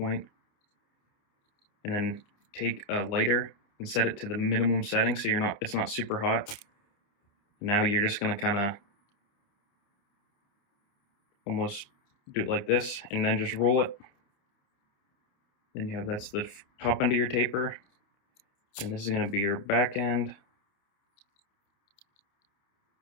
and then take a lighter and set it to the minimum setting so it's not super hot. Now you're just gonna kind of almost do it like this and then just roll it. Then you have that's the top end of your taper, and this is gonna be your back end.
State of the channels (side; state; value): right; late; 28 ms